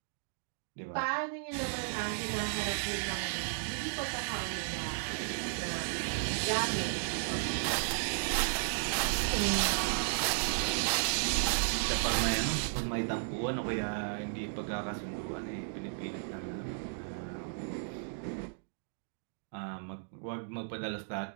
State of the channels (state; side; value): silent; left; digital silence